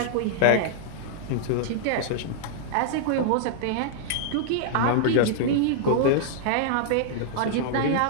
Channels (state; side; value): different; both; correlation -0.01